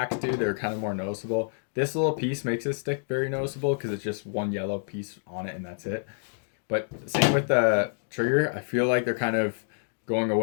do. They're kind of more noticeable. This little piece makes this stick very noticeable because it's just one yellow piece on it and that's it. But same with the Trigger. I feel like they're kind of going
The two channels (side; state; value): right; silent; digital silence